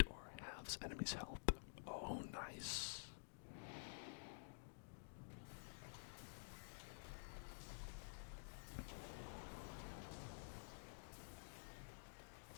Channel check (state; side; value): silent; right; digital silence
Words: halves enemy's health. Oh, nice.